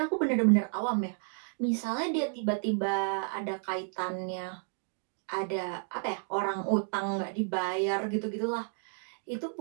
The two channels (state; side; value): silent; left; 57 dB below the other